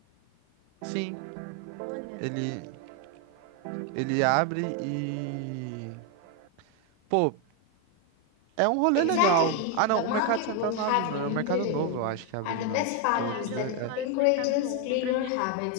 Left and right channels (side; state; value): both; different; correlation 0.01